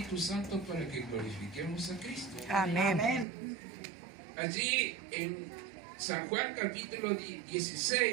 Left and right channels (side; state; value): left; drops out; at 3.2 s